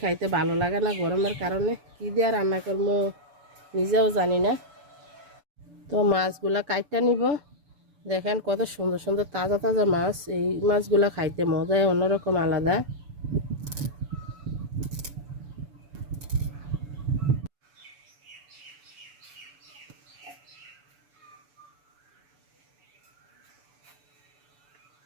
খাইতে ভালো লাগে না গরমের কারণে। কি দিয়ে রান্না করবো নিজেও জানি না। তো মাছগুলা কাইটা নিব। দেখেন কত সুন্দর সুন্দর তাজা তাজা মাছ। এই মাছগুলা খাইতে মজাই অন্যরকম আলাদা।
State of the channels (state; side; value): late; left; 6.9 ms